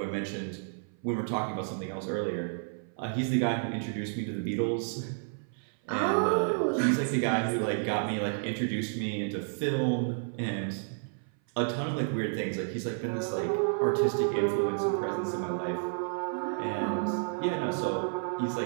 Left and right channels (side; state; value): left; silent; 56 dB below the other